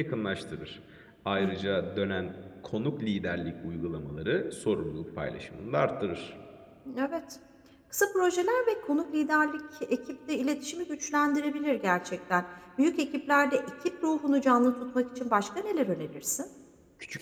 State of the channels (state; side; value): identical; both; correlation 1.00